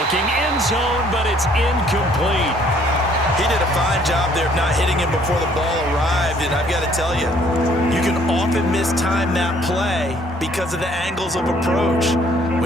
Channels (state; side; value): normal; both; correlation 0.61